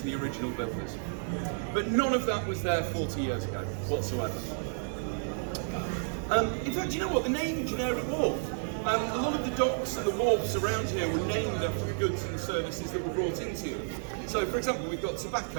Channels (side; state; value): left; silent; digital silence